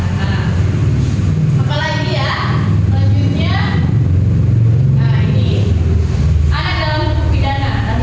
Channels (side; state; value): both; identical; correlation 1.00